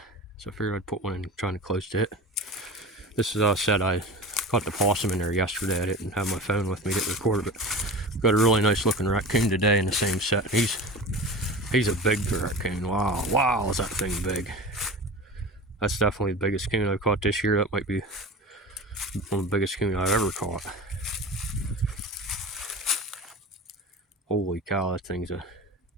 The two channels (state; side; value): normal; both; correlation 0.32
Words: so I figured I'd put one in kind of close to it. This is said I caught the possum in there yesterday. I didn't have my phone with me to record it, but got a really nice looking raccoon today in the same set. He's a big raccoon. Wow, is that thing big? That's definitely the biggest coon I've caught this year. That might be one of the biggest coon I've ever caught. Holy cow, that's